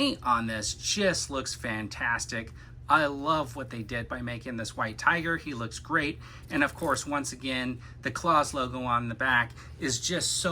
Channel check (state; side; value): identical; both; correlation 1.00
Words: on this just looks fantastic. I love what they did by making this white tiger. He looks great. And of course, once again, the claws logo on the back is just